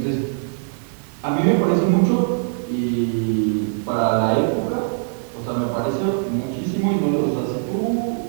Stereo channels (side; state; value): left; silent; 64 dB below the other